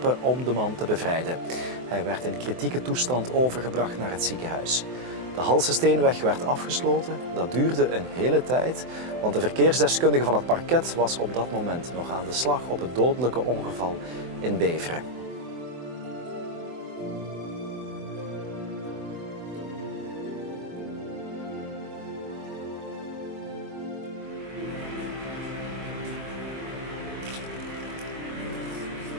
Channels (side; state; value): left; late; 24 ms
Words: om de man te bevrijden. Hij werd in kritieke toestand overgebracht naar het ziekenhuis. De Halsesteenweg werd afgesloten. Dat duurde een hele tijd, want de verkeersdeskundige van het parket was op dat moment nog aan de slag op het dodelijke ongeval in Beveren.